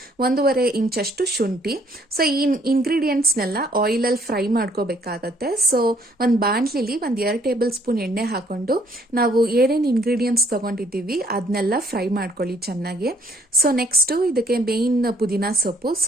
1.5 ಇಂಚಷ್ಟು ಶುಂಠಿ. ಸೊ ಈ ಇಂಗ್ರೀಡಿಯೆಂಟ್ಸ್ನೆಲ್ಲ ಆಯಿಲಲ್ಲಿ ಫ್ರೈ ಮಾಡ್ಕೋಬೇಕಾಗತ್ತೆ. ಸೊ ಒಂದು ಬಾಣಲಿಲಿ 2 ಟೇಬಲ್ ಸ್ಪೂನ್ ಎಣ್ಣೆ ಹಾಕೊಂಡು ನಾವು ಏನೇನು ಇಂಗ್ರೀಡಿಯೆಂಟ್ಸ್ ತಗೊಂಡಿದ್ದೀವಿ ಅದನ್ನೆಲ್ಲ ಫ್ರೈ ಮಾಡ್ಕೊಳ್ಳಿ ಚೆನ್ನಾಗಿ. ಸೊ ನೆಕ್ಸ್ಟ್ ಇದಕ್ಕೆ ಮೇನ್ ಪುದೀನಾ ಸೊಪ್ಪು.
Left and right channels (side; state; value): both; normal; correlation 0.64